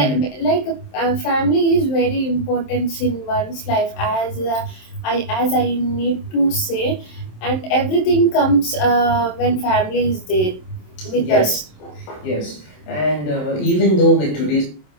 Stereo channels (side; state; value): right; late; 27 ms